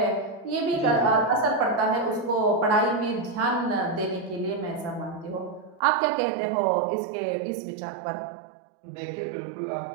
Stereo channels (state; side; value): drops out; left; at 5.8 s